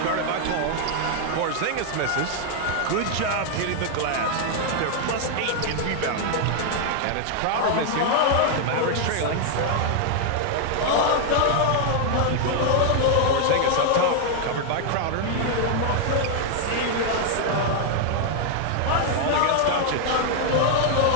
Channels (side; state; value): both; different; correlation 0.00